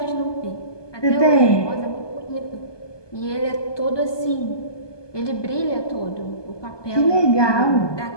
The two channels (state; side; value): late; right; 1.2 ms